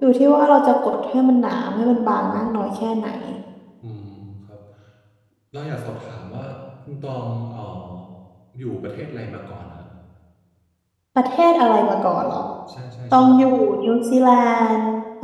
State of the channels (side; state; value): both; identical; correlation 1.00